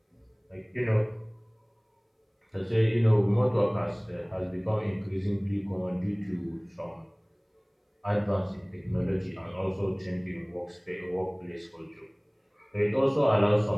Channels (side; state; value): both; identical; correlation 1.00